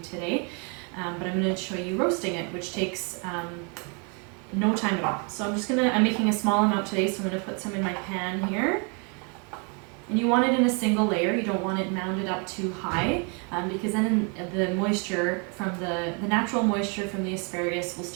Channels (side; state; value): left; quieter; 35.6 dB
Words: but I'm going to show you roasting it, which takes no time at all. So I'm making a small amount today, so I'm going to put some in my pan here. And you want it in a single layer. You don't want it mounded up too high, because then the moisture from the natural moisture from the asparagus will